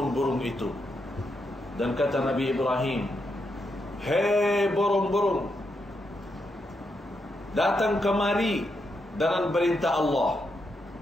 itu. Dan kata Nabi Ibrahim, hei burung-burung, datang kemari dengan perintah Allah.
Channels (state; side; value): normal; both; correlation 0.82